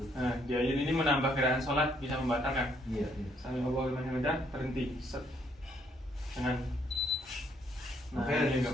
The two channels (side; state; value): both; normal; correlation 0.69